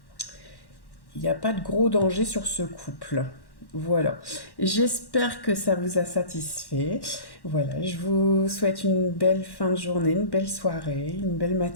gros danger sur ce couple. Voilà. J'espère que ça vous a satisfait. Voilà, je vous souhaite une belle fin de journée, une belle soirée, une belle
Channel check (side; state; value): right; late; 1.1 ms